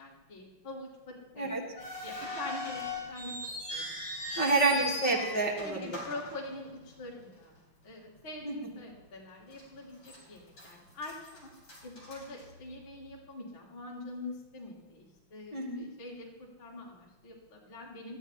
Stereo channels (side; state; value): right; late; 5.3 ms